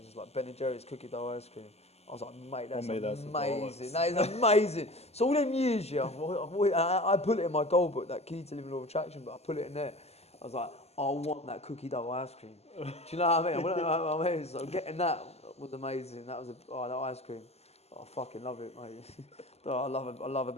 just like Ben & Jerry's cookie dough ice cream. I was like, mate, that's amazing. That is amazing. So all them years, yeah, I put it in my goal book, that key to living law of attraction, but I put it in there. I was like, I want that cookie dough ice cream. Do you know what I mean? So getting that was amazing. That was that ice cream. I fucking love it, mate. I love a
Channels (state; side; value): late; right; 0.30 ms